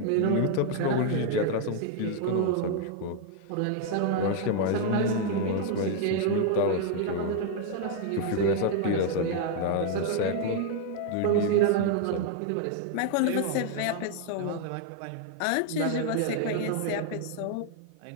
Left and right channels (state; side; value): different; both; correlation 0.00